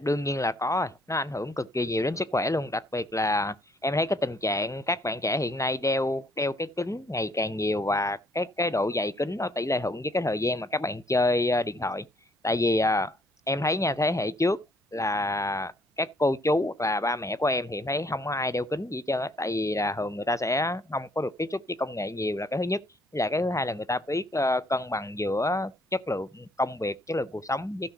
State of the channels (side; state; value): both; normal; correlation 0.64